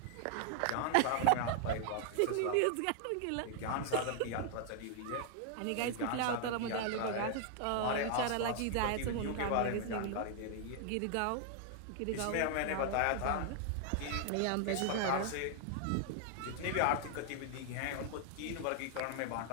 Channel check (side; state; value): both; different; correlation 0.00